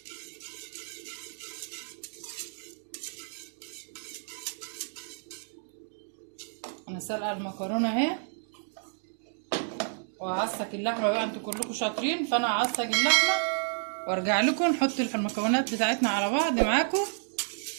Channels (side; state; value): left; silent; digital silence